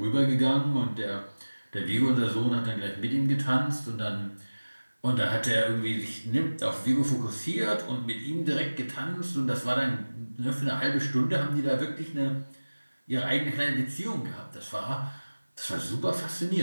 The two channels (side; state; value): both; inverted; correlation -1.00